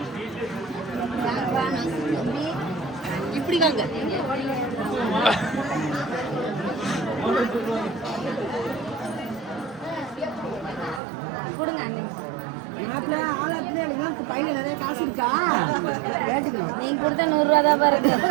இப்படி வாங்க. மாப்பிள்ள ஆளாத்துல எனக்கு பையில நிறைய காசு இருக்கா கேட்டுக்கணும். நீங்க கொடுத்த 100 ரூபா தான் பாருங்க.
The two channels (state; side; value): drops out; left; at 11.0 s